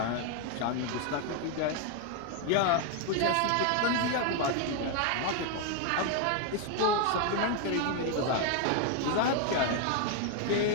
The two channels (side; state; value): both; different; correlation 0.01